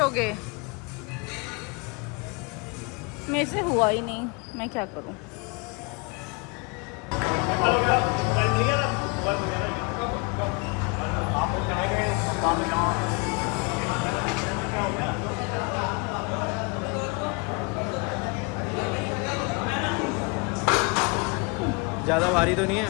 मेरे से हुआ ही नहीं, मैं क्या करूं? ज़्यादा भारी तो नहीं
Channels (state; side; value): quieter; right; 31.4 dB